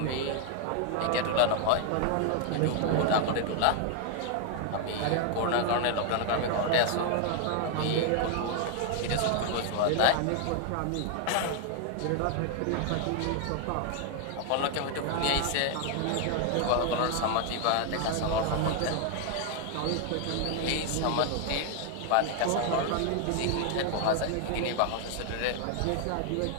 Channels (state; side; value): different; both; correlation 0.00